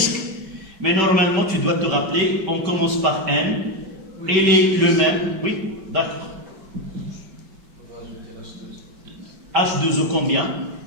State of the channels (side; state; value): left; late; 5.2 ms